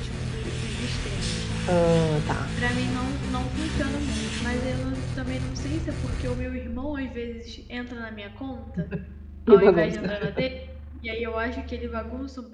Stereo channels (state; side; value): identical; both; correlation 1.00